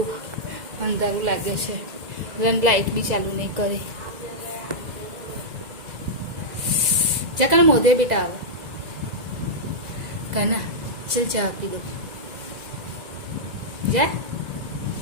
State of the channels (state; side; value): late; left; 2.0 ms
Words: અંધારું લાગે છે. લાઇટ બી ચાલુ નહીં કરે. જા કાના મોઢે બેટા આવો. કાના ચલ ચા આપી દો. જા